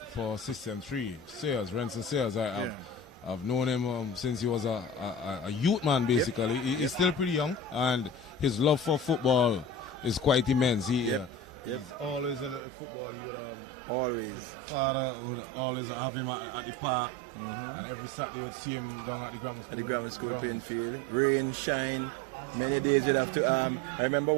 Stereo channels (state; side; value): drops out; left; at 12.6 s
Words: for System 3, Sayers, Renson Sayers. I've known him since he was a youth man, basically. He's still pretty young, and his love for football is quite immense. He's always in football. He would, always. His father would always have him at the park, and every Saturday would see him down at the grammar school grounds. Rain, shine. Many days you'd have to. I remember